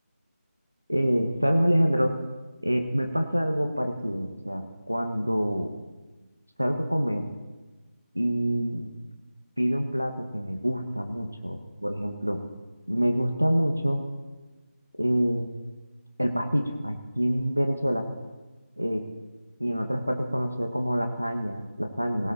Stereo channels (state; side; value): inverted; both; correlation -0.97